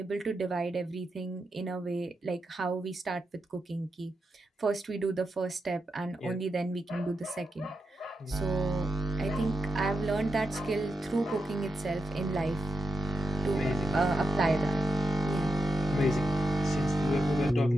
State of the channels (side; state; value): both; normal; correlation 0.87